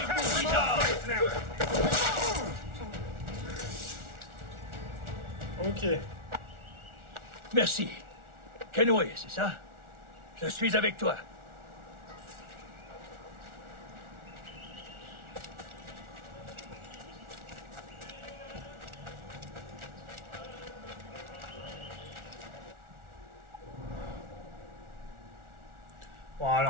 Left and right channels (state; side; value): late; left; 1.4 ms